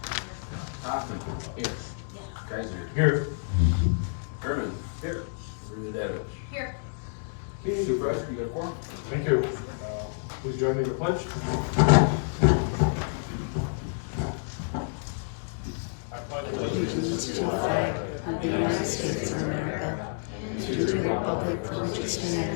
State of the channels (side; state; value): right; silent; digital silence